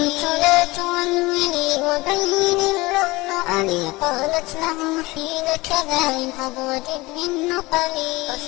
لا تولولي وبين اللؤلؤ، قالت له حين كذا إن أضوجد من نقلي.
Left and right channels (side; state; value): right; quieter; 21.7 dB